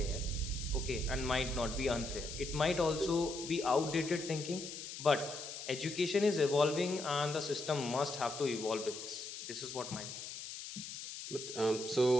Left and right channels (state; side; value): noise; left; hiss, 9 dB below the sound